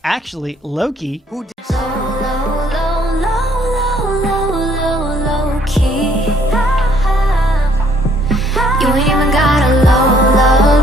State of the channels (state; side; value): normal; both; correlation 0.64